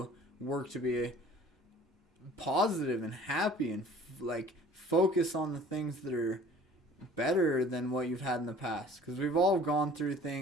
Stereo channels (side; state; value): both; normal; correlation 0.50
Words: work to be positive and happy and focus on the things that are better than what you've had in the past. Because we've all gone through